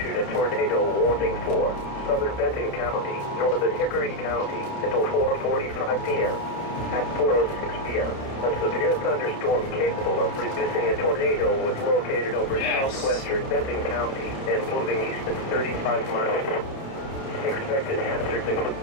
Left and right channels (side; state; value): right; late; 30 ms